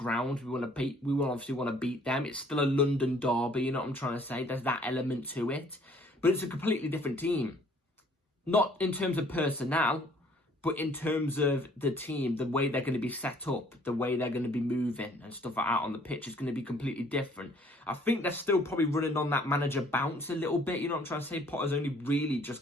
We obviously want to beat them. It's still a London derby. You know what I'm trying to say? There's that element to it. But it's a completely different team. Not in terms of personnel, but in terms of the team, the way they're going to be set up, the way they're going to be moving and stuff like that on the pitch is going to be completely different. I think they're still probably running on that manager bounce a little bit. You know what I'm trying to say? Potter's only really just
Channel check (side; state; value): both; normal; correlation 0.58